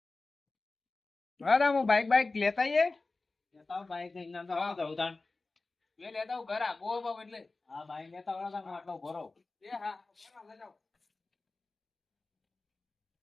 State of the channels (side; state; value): right; quieter; 3.5 dB